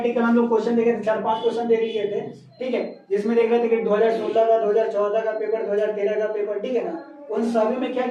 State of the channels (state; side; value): identical; both; correlation 1.00